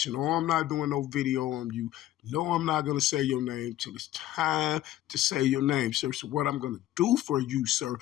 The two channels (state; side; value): quieter; right; 13.6 dB